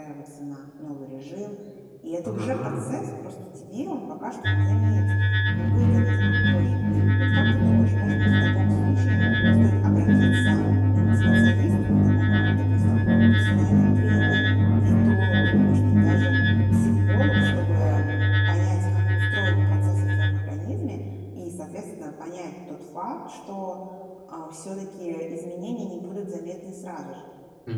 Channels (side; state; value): both; identical; correlation 1.00